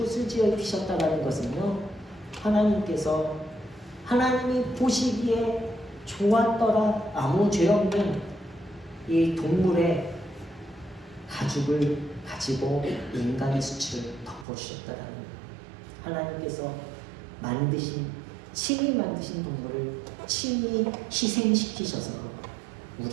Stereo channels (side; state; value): left; drops out; at 14.5 s